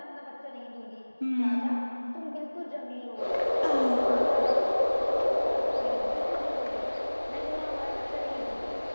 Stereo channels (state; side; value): inverted; both; correlation -1.00